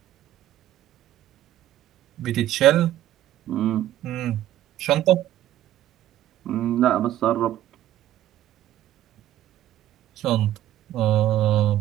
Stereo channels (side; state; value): left; quieter; 12.9 dB